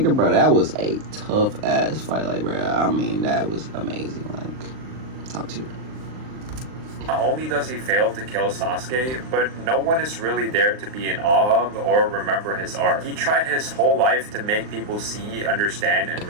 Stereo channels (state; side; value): late; left; 39 ms